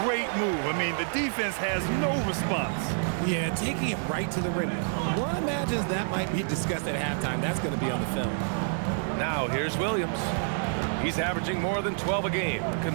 great move. I mean, the defense has no response. Yeah, taking it right to the rim. One imagines that might be discussed at halftime. That's going to be on the film. Now here's Williams. He's averaging more than 12 a game.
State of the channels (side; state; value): left; silent; digital silence